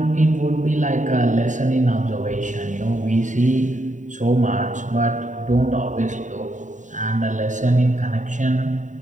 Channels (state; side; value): late; left; 0.36 ms